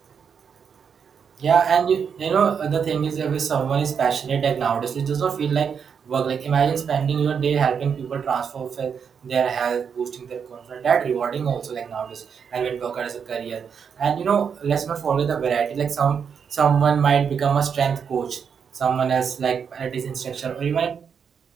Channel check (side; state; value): left; quieter; 6.8 dB